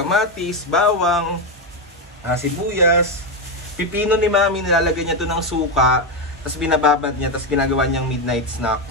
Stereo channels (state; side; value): normal; both; correlation 0.09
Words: bawang, sibuyas, pipino ni Mami, nilalagay niya ito ng suka, tapos binababad niya, tapos ginagawa niyang midnight